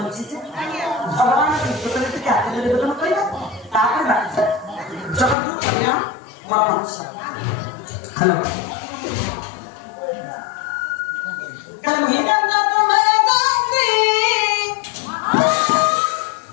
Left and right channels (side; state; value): right; drops out; at 5.4 s